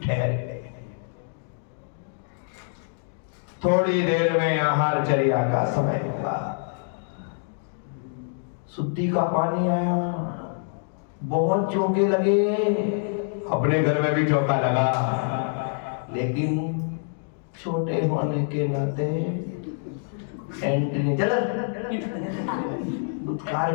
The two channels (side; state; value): right; silent; digital silence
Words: ठहर गए। थोड़ी देर में आहार चर्या का समय हुआ। शुद्धि का पानी आया, बहुत चौके लगे। अपने घर में भी चौका लगा, लेकिन छोटे होने के नाते एंट्री चल दुत्कार